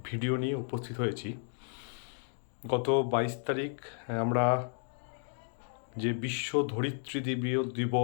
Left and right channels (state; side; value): silent; right; 56 dB below the other